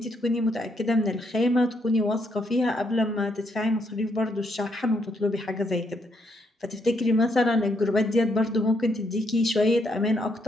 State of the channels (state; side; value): normal; both; correlation 0.75